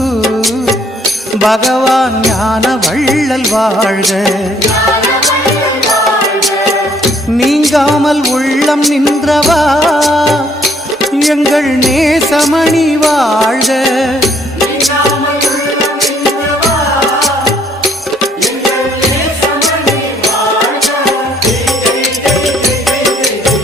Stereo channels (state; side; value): normal; both; correlation 0.65